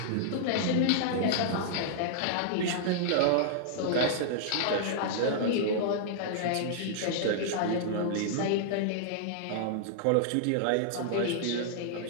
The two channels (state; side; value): different; both; correlation -0.01